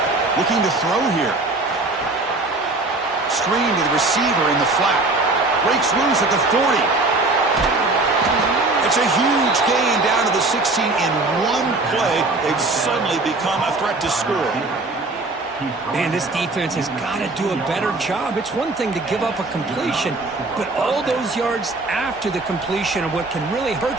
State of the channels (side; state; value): left; quieter; 3.2 dB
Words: Looking to throw here. Screen to the receiver in the flat. Breaks loose at the 40. It's a huge gain down to the 16 in one play. They've suddenly become a threat to score. Man, this defense has got to do a better job. It's one thing to give up a completion, but all those yards after the completion are what can really